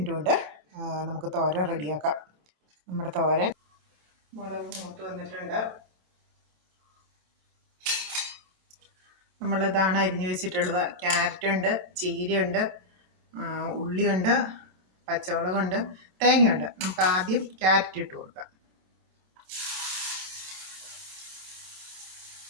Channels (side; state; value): left; late; 27 ms